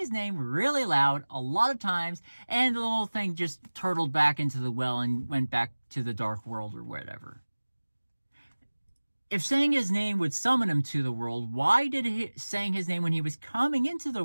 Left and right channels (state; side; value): inverted; both; correlation -1.00